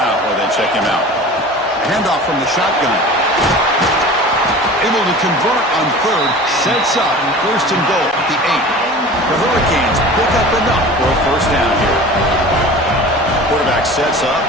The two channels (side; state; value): both; normal; correlation 0.39